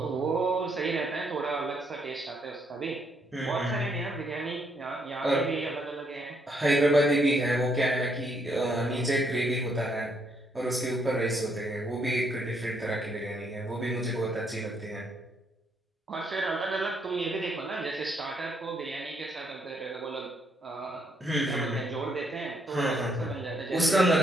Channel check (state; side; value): normal; both; correlation 0.72